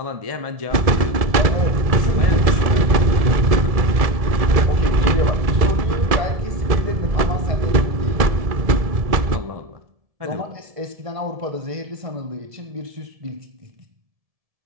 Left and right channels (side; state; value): left; late; 1.7 ms